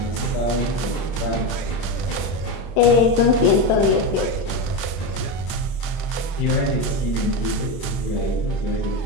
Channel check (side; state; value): right; late; 31 ms